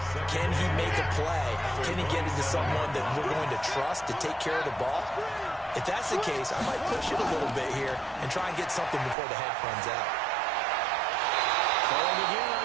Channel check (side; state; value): left; drops out; at 9.2 s